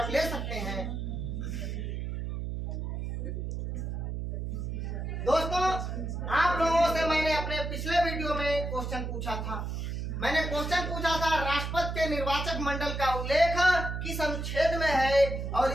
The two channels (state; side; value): noise; right; hum, 4 dB below the sound